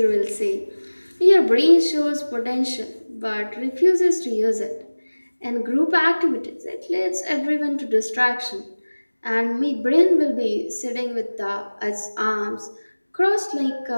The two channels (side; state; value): both; inverted; correlation -1.00